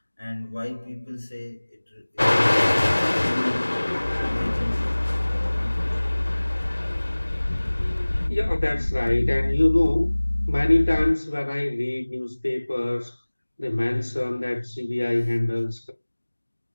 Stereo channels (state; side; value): inverted; both; correlation -1.00